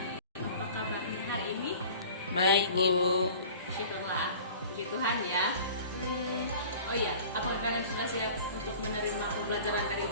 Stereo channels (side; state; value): both; inverted; correlation -0.43